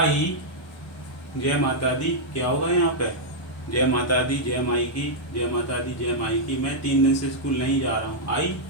जय माता दी, क्या होगा यहाँ पे? जय माता दी, जय माई की, जय माता दी, जय माई की। मैं 3 दिन से स्कूल नहीं जा रहा हूँ। आई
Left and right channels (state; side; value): normal; both; correlation -0.06